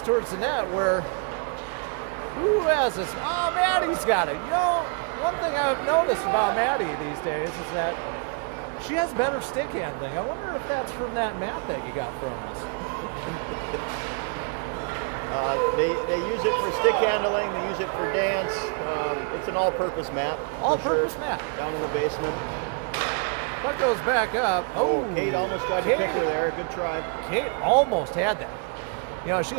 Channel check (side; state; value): left; quieter; 36.8 dB